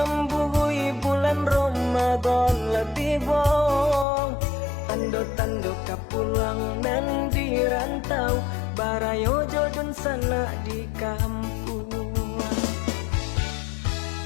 bulan Ramadan lebih bong. Tando-tando kapulang nan di rantau, barayo jodon sana di kampung.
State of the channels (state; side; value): drops out; right; at 4.0 s